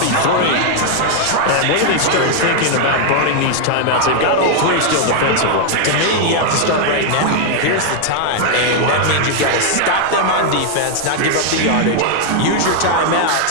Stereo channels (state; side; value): different; both; correlation 0.00